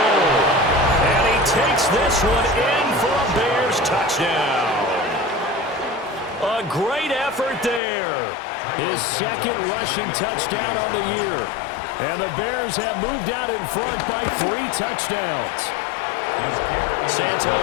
And he takes this one in for a Bears touchdown. A great effort there. His second rushing touchdown on the year. And the Bears have moved out in front by 3 touchdowns.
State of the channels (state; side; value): drops out; right; at 7.8 s